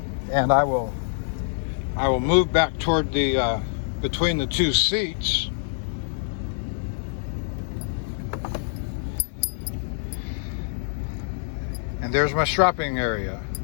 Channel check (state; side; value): silent; right; digital silence